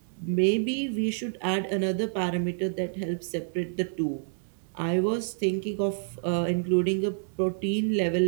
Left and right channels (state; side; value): silent; left; digital silence